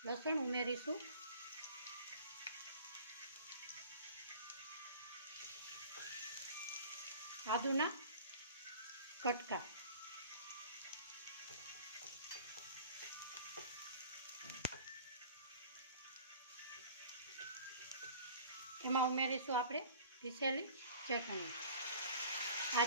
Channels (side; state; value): both; inverted; correlation -0.45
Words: લસણ ઉમેરીશું. આદુના કટકા. એમાં ઉમેરીશું આપણે પીસેલી ચટણી. આ